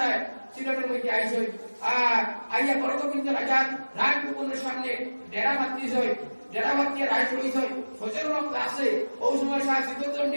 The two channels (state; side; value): inverted; both; correlation -1.00